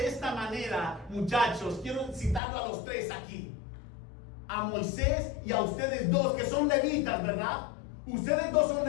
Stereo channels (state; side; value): drops out; right; at 2.4 s